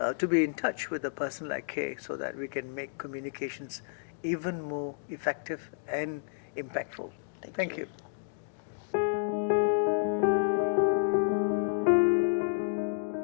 touch with a person like Kay, so that we can make communications even more effective and impactful. Thank you.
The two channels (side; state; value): right; silent; digital silence